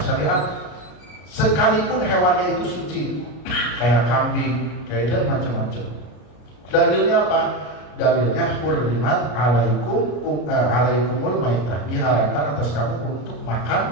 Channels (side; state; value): right; late; 33 ms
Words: sekalipun hewannya itu suci, kayak kambing, kayak itu macam-macam. Dalilnya apa? Dalilnya hurrimat alaikumul maitah, diharamkan atas kamu untuk